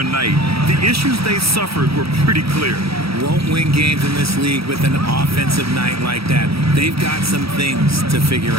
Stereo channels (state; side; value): late; left; 0.76 ms